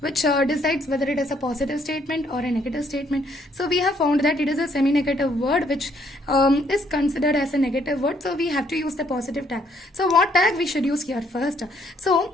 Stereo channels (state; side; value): normal; both; correlation 0.68